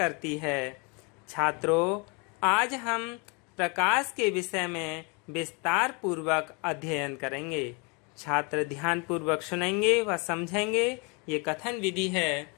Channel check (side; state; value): right; quieter; 31.7 dB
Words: है। छात्रों, आज हम प्रकाश के विषय में विस्तार पूर्वक अध्ययन करेंगे। छात्र ध्यान पूर्वक सुनेंगे व समझेंगे। ये कथन विधि है।